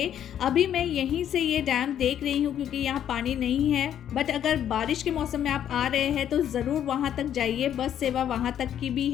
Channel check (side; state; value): right; quieter; 10.0 dB